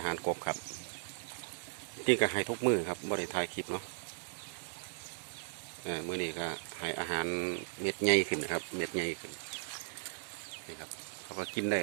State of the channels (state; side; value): silent; left; digital silence